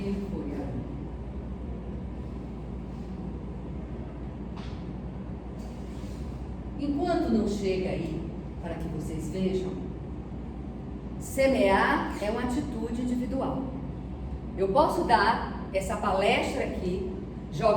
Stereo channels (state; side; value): identical; both; correlation 1.00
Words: foi. Enquanto não chega aí, para que vocês vejam, semear é uma atitude individual. Eu posso dar essa palestra aqui,